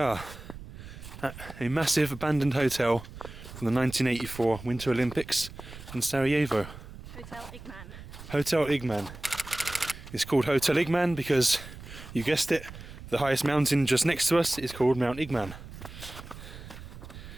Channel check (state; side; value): noise; right; rumble, 14 dB below the sound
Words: at a massive abandoned hotel from the 1984 Winter Olympics in Sarajevo. Hotel Igman. Hotel Igman. It's called Hotel Igman because, you guessed it, the highest mountain just next to us is called Mount Igman.